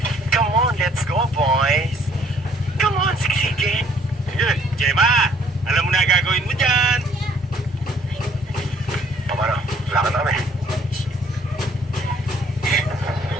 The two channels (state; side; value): normal; both; correlation 0.62